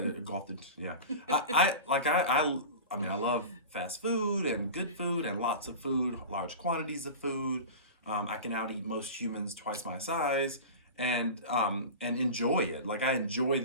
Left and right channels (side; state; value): both; inverted; correlation -0.31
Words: I mean, I love fast food and good food and lots of food, large quantities of food. I can out eat most humans twice my size and enjoy it. Like, I enjoy